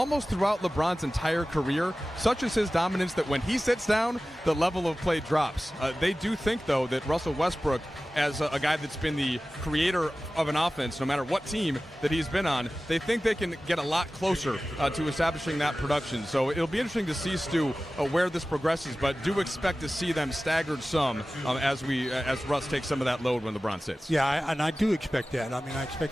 throughout LeBron's entire career, such is his dominance that when he sits down, the level of play drops. They do think, though, that Russell Westbrook, as a guy that's been the creator of an offense, no matter what team that he's been on, they think they can get a lot closer to establishing that production. So it'll be interesting to see, Stu, where this progresses, but do expect to see them staggered some as Russ takes some of that load when LeBron sits. Yeah, and I do expect that. I mean, I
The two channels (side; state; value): both; normal; correlation 0.96